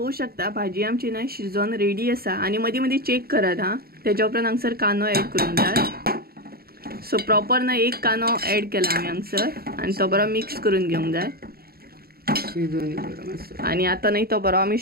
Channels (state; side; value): late; left; 0.45 ms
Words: शकता भाजी आमची ना शिजोवन रेडी आसा. आनी मदीं मदीं चेक करात हां. तेच्या उपरांत हांगसर कांदो ऍड करूंक जाय. सो प्रॉपर ना एक कांदो ऍड केला आमी हांगसर आनी तो बरो मिक्स करून घेवंक जाय. आणि आता नाही तो बरो आमी